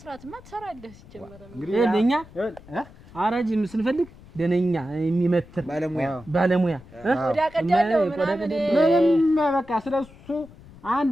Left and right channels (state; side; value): noise; left; rumble, 22 dB below the sound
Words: ትሰራለህ። ሲጀመር እንግዲህ ለኛ አራጅ ስንፈልግ ደነኛ የሚመትር ባለሙያ ቆዳ ቀዳለው ምንም በቃ ስለሱ